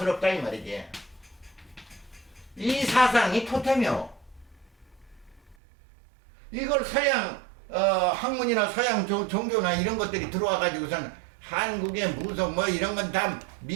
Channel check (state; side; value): drops out; left; at 5.6 s